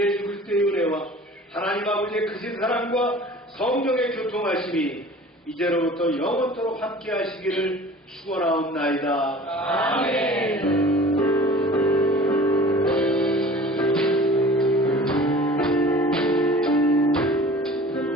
그리스도의 은혜와 하나님 아버지의 크신 사랑과 성령의 교통하심이 이제로부터 영원토록 함께 하시기를 축원하옵나이다. 아멘.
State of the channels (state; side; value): normal; both; correlation 0.44